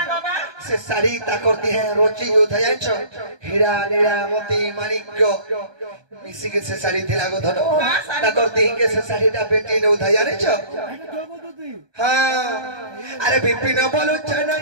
বাবা से साड़ी ताकरती है रोची योद्धा जानिछो हीरा नीला मोती माणिक्य मिसी के से साड़ी थिला गो धन ताकरती के से साड़ीटा बेटी ने उधा जानिछो हां अरे बिपिन बोलु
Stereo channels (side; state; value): left; late; 1.2 ms